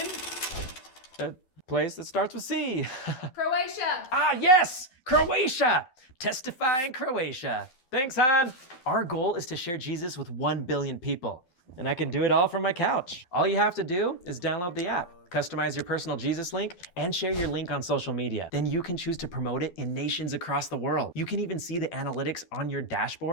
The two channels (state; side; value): late; right; 12 ms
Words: a place that starts with C. Croatia. Ah, yes, Croatia. Testify in Croatia. Thanks, Han. Our goal is to share Jesus with 1 billion people, and I can do it all from my couch. All you have to do is download the app, customize your personal Jesus link, and share your link on social media. Then you can choose to promote it in nations across the world. You can even see the analytics on your